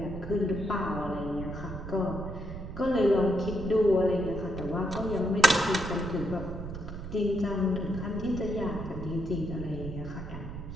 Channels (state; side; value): noise; right; rumble, 9 dB below the sound